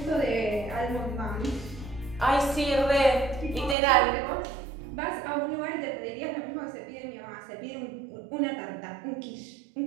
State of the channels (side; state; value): left; drops out; at 3.8 s